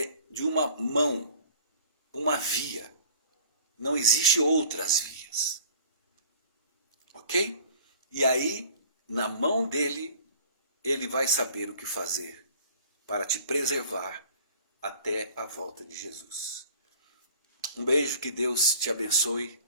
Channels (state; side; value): inverted; both; correlation -0.48